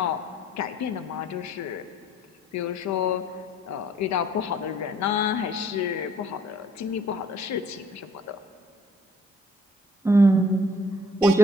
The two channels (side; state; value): both; normal; correlation 0.59